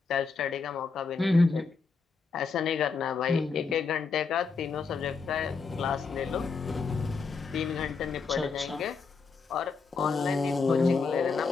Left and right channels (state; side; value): quieter; right; 4.8 dB